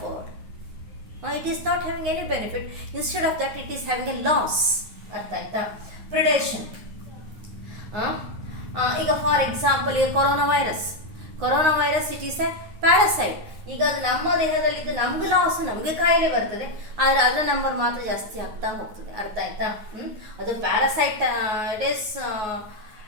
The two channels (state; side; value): late; left; 9.6 ms